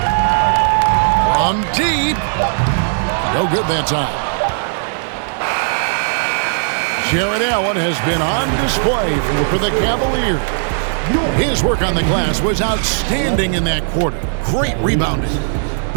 From deep. No good that time. Jared Allen has been on display for the Cavaliers. His work on the glass was outstanding in that quarter. Great rebounding.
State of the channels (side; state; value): left; silent; digital silence